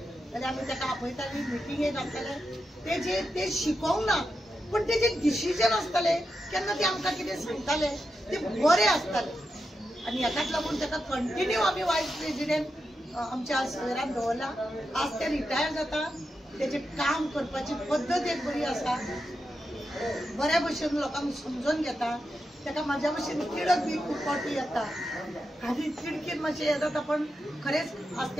जाल्यार आमी तेका आपयताली मिटिंगेक घालताले ते शिकोवंक ना पण तेजे डिसिजन आसताले केन्ना ते आमकां कितें सांगताले ते बरें आसताले आनी हेकाच लागून तेका कंटिन्यू आमी वायस प्रेसिडेंट आमच्या सवेरान दवरला। आज ते रिटायर जाता तेजे काम करपाची पद्दत एक बरी आसा बऱ्या भशेन लोकांक समजून घेता तेका म्हाज्या भशेन तिडक बी खूब फावटी येता आनी तिडकीन मातशें हें जाता पण खरेंच आज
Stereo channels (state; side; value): normal; both; correlation 0.88